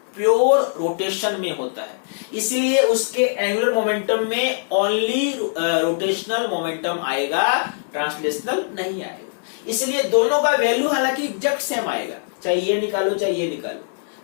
प्योर रोटेशन में होता है, इसलिए उसके एंगुलर मोमेंटम में ओनली रोटेशनल मोमेंटम आएगा, ट्रांसलेशनल नहीं आएगा। इसलिए दोनों का वैल्यू हालांकि एग्जैक्ट सेम आएगा, चाहे ये निकालो चाहे ये निकालो।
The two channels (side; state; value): right; silent; digital silence